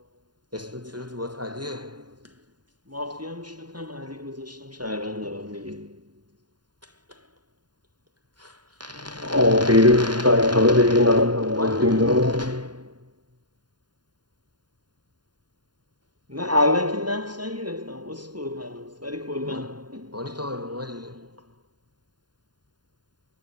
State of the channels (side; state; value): left; late; 0.70 ms